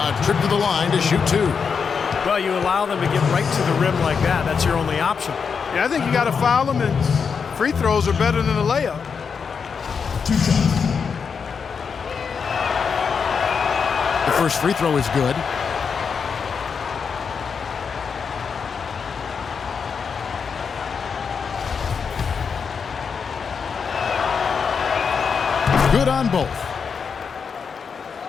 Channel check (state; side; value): quieter; right; 6.0 dB